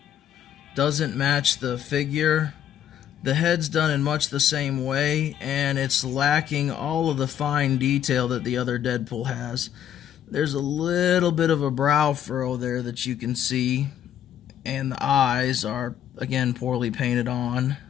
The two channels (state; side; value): quieter; right; 10.2 dB